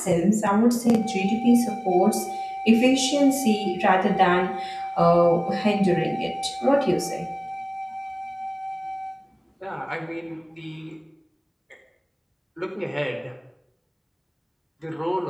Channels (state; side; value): identical; both; correlation 1.00